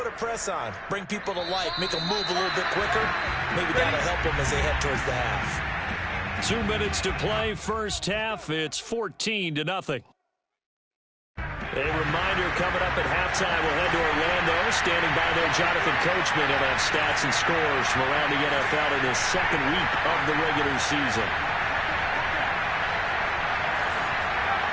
a press on, bring people to life, make them move a little bit quicker. Maybe that'll help them as they head towards the half. 2 minutes to play, first half. It's 14-0. A reminder coming up at halftime. We'll head to Orlando. Standing by there, Jonathan Coachman. He'll have stats and scores from around the NFL in his 2nd week of the regular season.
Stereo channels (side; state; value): both; identical; correlation 1.00